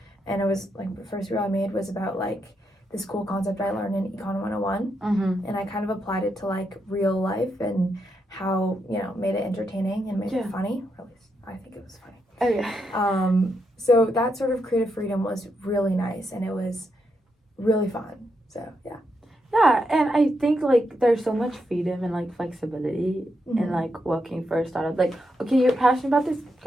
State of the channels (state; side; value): normal; both; correlation 0.82